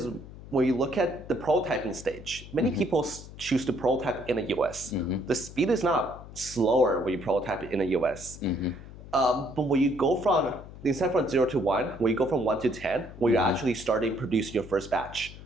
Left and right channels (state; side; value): noise; left; hum, 15 dB below the sound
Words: when you look at the prototyping stage, many people choose to prototype in the US. The speed is not slower when you prototype in the US. But when you go instead from 0 to 1, when you go from 1 to 10, when you're actually starting producing your first batch,